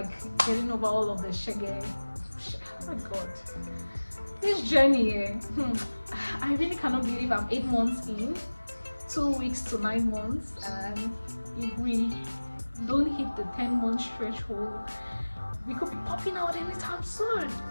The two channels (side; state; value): both; inverted; correlation -1.00